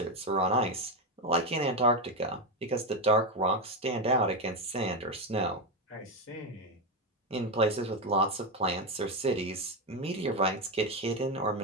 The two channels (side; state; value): both; normal; correlation 0.10